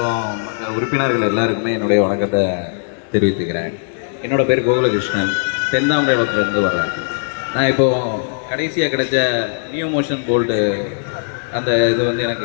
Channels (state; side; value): silent; right; digital silence